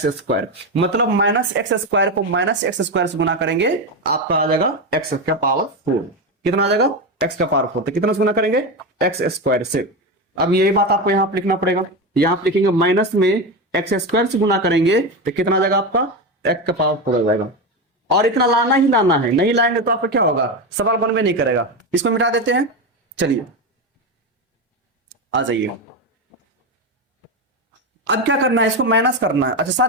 स्क्वायर। मतलब माइनस एक्स स्क्वायर को माइनस एक्स स्क्वायर से गुना करेंगे, आपका आ जाएगा x का पावर 4। कितना आ जाएगा, x का पावर 4। तो कितना से गुना करेंगे, एक्स स्क्वायर से। अब यही बात आपको यहां पर लिखना पड़ेगा, यहां पर लिखेंगे माइनस में एक्स स्क्वायर से गुना करेंगे तो कितना आ जाएगा आपका, x का पावर 4 आ जाएगा। और इतना लाना ही लाना है, नहीं लाएंगे तो आपका क्या होगा, सवाल बन में नहीं करेगा। इसको मिटा देते हैं। चलिए आ जाइए। अब क्या करना है, इसको माइनस करना है। अच्छा,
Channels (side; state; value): both; normal; correlation 0.16